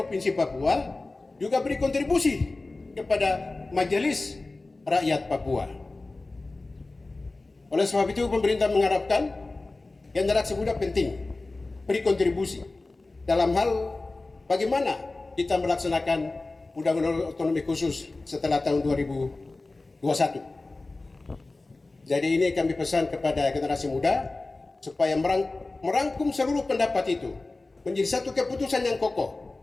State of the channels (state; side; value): quieter; right; 3.2 dB